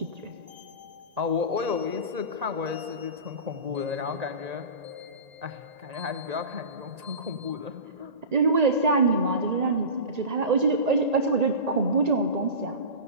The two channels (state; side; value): late; left; 1.8 ms